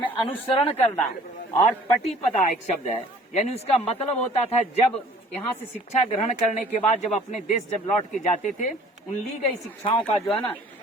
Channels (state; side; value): normal; both; correlation 0.52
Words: अनुसरण करना। और पटिपदा एक शब्द है, यानी उसका मतलब होता था जब यहाँ से शिक्षा ग्रहण करने के बाद जब अपने देश जब लौट के जाते थे, उन ली गई शिक्षाओं का जो है ना